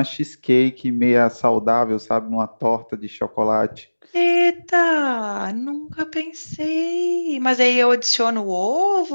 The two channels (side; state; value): both; inverted; correlation -1.00